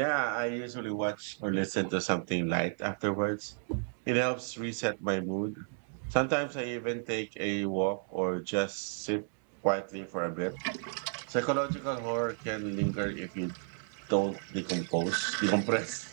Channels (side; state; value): left; silent; 56 dB below the other